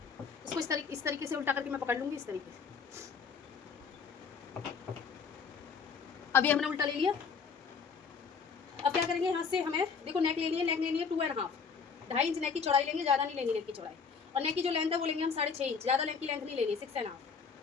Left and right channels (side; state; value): right; quieter; 5.8 dB